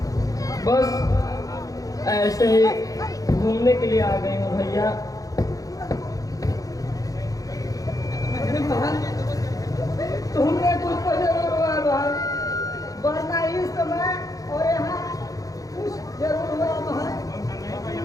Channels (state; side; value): late; right; 0.17 ms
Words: बस ऐसे ही घूमने के लिए आ गई हूँ भैया। तुमने कुछ तो जरूर हुआ भाई, वरना इस समय और यहाँ कुछ जरूर हुआ भाई।